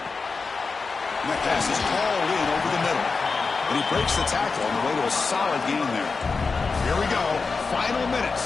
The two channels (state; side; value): quieter; right; 4.5 dB